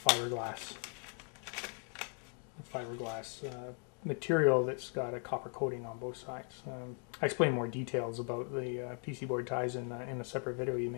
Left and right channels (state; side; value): quieter; right; 36.2 dB